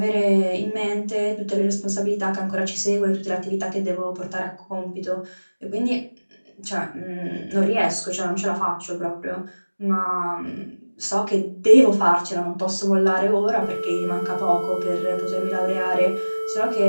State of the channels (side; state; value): both; inverted; correlation -1.00